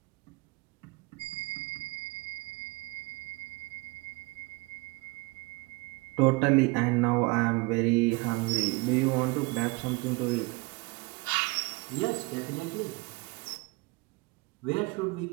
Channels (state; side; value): quieter; left; 25.9 dB